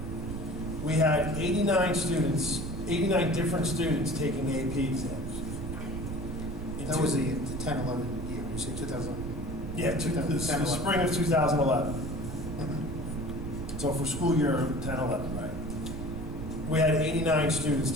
we had 89 different students taking AP exams. That was the 10-11 year, you say 2000? Yeah, the spring of 2011. So for school year 10-11, right? We had 89 students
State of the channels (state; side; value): noise; right; rumble, 7 dB below the sound